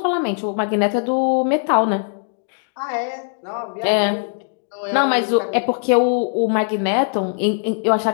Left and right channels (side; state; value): right; silent; 66 dB below the other